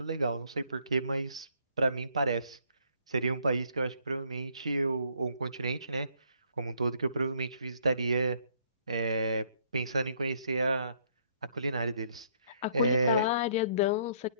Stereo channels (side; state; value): both; inverted; correlation -0.65